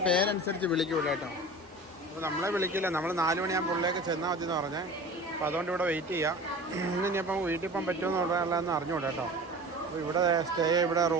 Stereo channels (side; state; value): both; normal; correlation 0.38